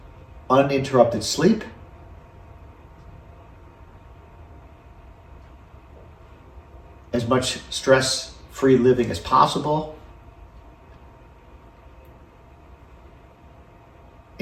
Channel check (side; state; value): both; identical; correlation 1.00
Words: uninterrupted sleep, as much stress-free living as possible,